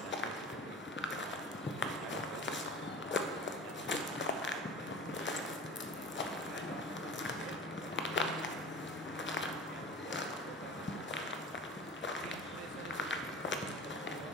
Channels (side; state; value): both; normal; correlation 0.36